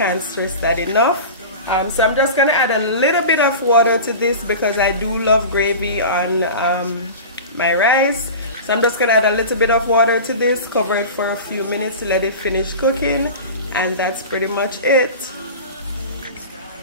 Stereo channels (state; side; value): inverted; both; correlation -0.32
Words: stress that enough. So I'm just gonna add a little bit of water to this because I do love gravy on my rice. So I'm just gonna add a little bit of water to this, cover it for a few minutes to let it finish cooking, and that's pretty much it.